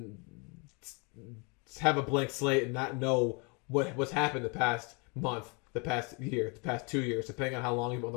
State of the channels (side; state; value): right; quieter; 32.2 dB